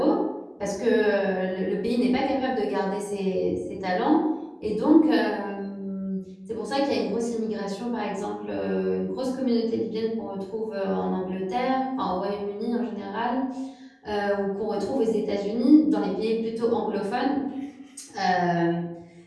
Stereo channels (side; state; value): both; identical; correlation 1.00